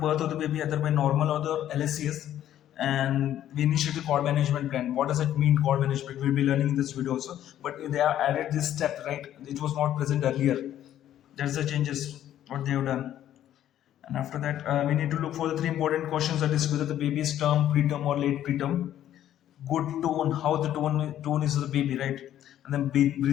of the baby, either by normal or the LSCS, and we initiate the cord management plan. What does it mean, cord management? We'll be learning in this video also. But they have added this step, right? It was not present earlier. That's the changes what they have done. And after that, we need to look for the three important questions, that is whether the baby is term, preterm, or late preterm. Good tone, how the tone is of the baby, right? And then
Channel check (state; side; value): quieter; right; 11.6 dB